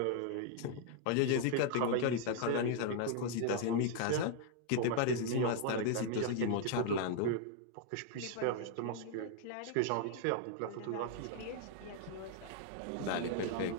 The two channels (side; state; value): both; different; correlation 0.00